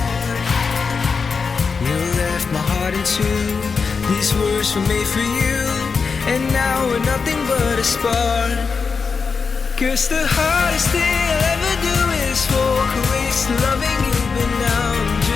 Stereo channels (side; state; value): right; quieter; 5.2 dB